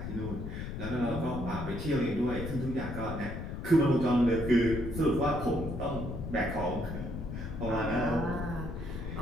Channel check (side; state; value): left; noise; rumble, 6 dB below the sound